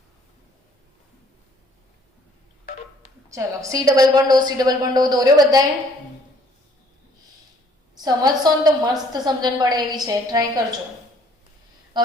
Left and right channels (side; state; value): both; normal; correlation 0.60